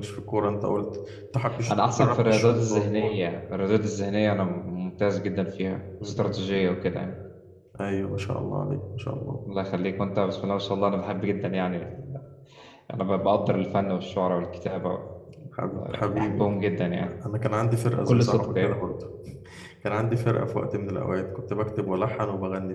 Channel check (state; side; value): identical; both; correlation 1.00